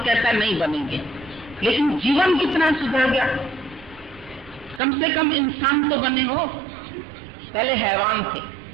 है नहीं बनेंगे, लेकिन जीवन कितना सुधर गया। कम से कम इंसान तो बने हो, पहले हैवान थे,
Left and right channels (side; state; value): left; drops out; at 4.8 s